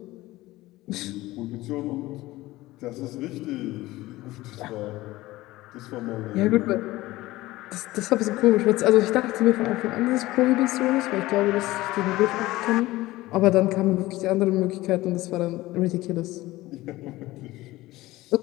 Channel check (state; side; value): quieter; right; 18.1 dB